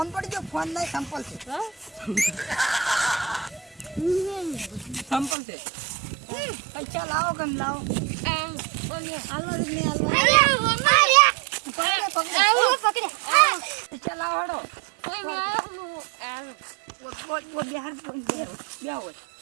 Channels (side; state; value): left; drops out; at 5.4 s